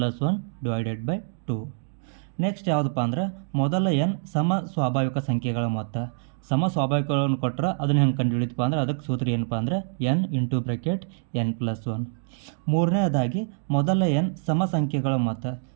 divided by 2. Next ಯಾವುದಪ್ಪ ಅಂದ್ರೆ ಮೊದಲ ಎನ್ ಸಮ ಸ್ವಾಭಾವಿಕ ಸಂಖ್ಯೆಗಳ ಮೊತ್ತ. ಸಮ ಸ್ವಾಭಾವಿಕಗಳನ್ನು ಕೊಟ್ಟರೆ ಅದನ್ನು ಹೆಂಗೆ ಕಂಡುಹಿಡಿತಪ್ಪ ಅಂದ್ರೆ ಅದಕ್ಕೆ ಸೂತ್ರ ಏನಪ್ಪ ಅಂದ್ರೆ ಎನ್ ಇಂಟು ಬ್ರಾಕೆಟ್ n+1. ಮೂರನೇದಾಗಿ ಮೊದಲ ಎನ್ ಸಮ ಸಂಖ್ಯೆಗಳ ಮೊತ್ತ.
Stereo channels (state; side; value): silent; left; digital silence